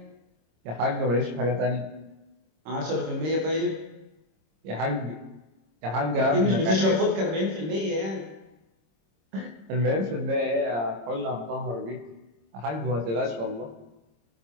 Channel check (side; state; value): left; late; 26 ms